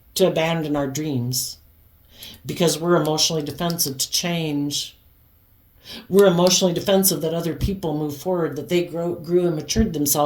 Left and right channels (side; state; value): both; identical; correlation 1.00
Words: to abandon our dreams because we're emotionally defensive to change. We're emotionally defensive that other people move forward, that they grew and matured